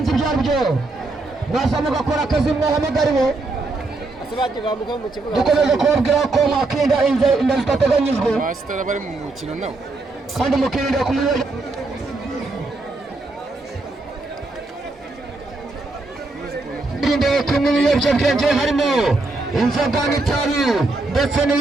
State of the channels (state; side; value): quieter; left; 3.2 dB